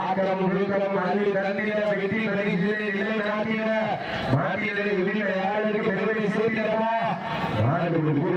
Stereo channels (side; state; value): both; identical; correlation 1.00